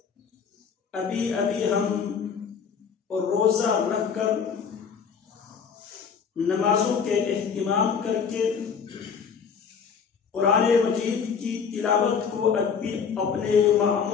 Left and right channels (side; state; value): right; quieter; 6.5 dB